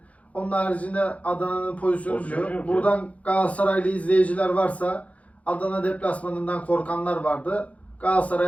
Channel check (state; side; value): late; right; 0.066 ms